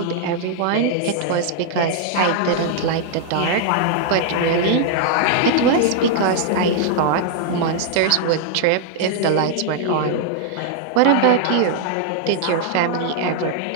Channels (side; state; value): both; different; correlation 0.00